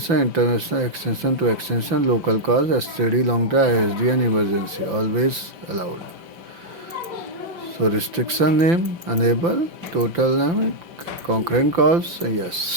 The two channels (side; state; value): left; late; 5.5 ms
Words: international extension to extension, local calls, STD, long term, ISD, and emergency. Always allowed. So restriction name, enable, total limit, concurrent calls,